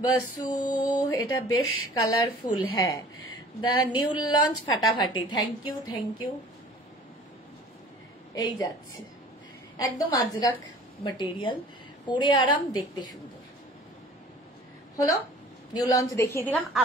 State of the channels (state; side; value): normal; both; correlation 0.47